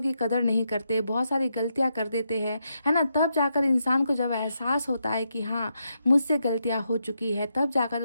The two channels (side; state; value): both; inverted; correlation -0.82